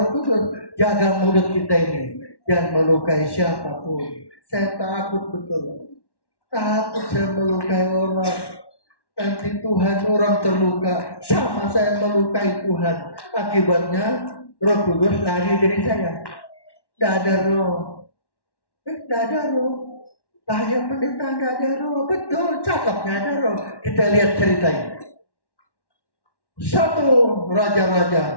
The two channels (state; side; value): late; right; 1.1 ms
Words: Kudus. Jaga mulut kita ini, jangan melukai siapapun. Saya takut betul. Takut saya melukai orang. Nanti Tuhan orang terluka, sama saya melukai Tuhan. Akibatnya Roh Kudus lari dari saya. Tidak ada roh. Tidak ada roh. Bahaya pendeta tidak ada roh. Betul, cakapnya ada roh. Kita lihat ceritanya. 1